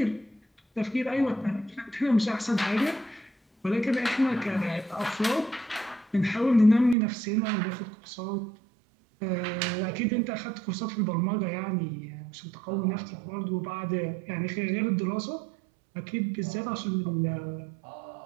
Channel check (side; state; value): left; drops out; at 7.0 s